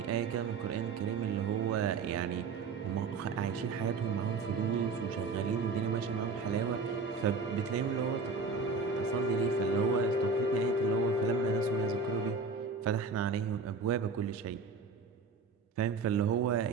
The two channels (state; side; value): quieter; left; 4.3 dB